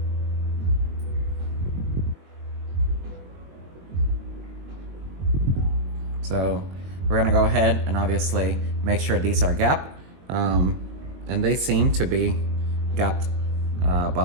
So we're gonna go ahead and obviously make sure these are gapped. And they seem to be gapped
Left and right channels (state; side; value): late; left; 22 ms